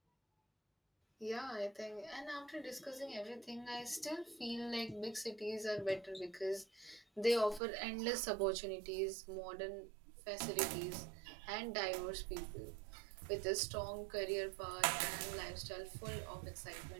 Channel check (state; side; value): drops out; left; at 7.6 s